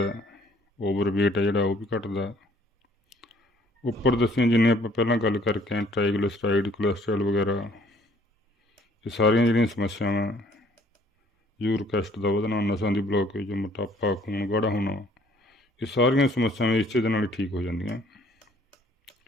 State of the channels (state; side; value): normal; both; correlation 0.60